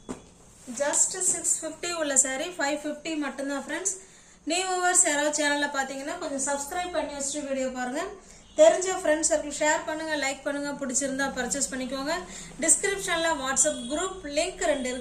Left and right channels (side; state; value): both; identical; correlation 1.00